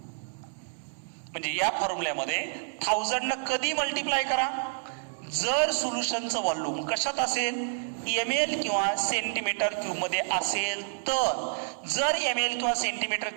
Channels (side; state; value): left; silent; 59 dB below the other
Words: म्हणजे या फॉर्म्युल्यामध्ये 1000 न कधी मल्टिप्लाय करा? जर सोल्युशनचं व्हॉल्यूम कशात असेल? ml किंवा सेंटीमीटर क्यूब मध्ये असेल तर. जर ml किंवा सेंटीमीटर